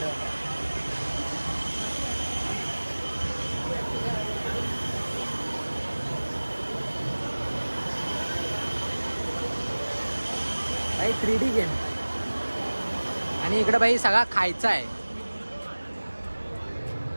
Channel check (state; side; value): inverted; both; correlation -1.00